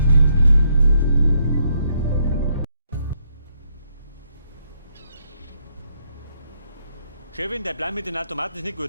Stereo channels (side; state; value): both; inverted; correlation -0.75